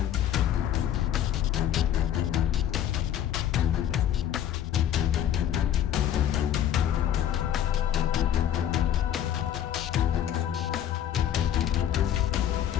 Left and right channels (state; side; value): quieter; right; 10.5 dB